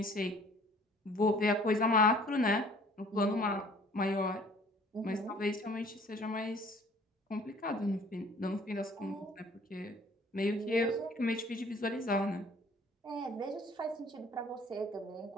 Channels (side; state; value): both; normal; correlation 0.54